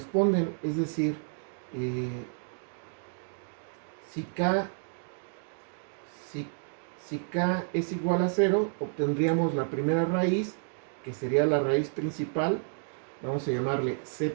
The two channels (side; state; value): left; silent; digital silence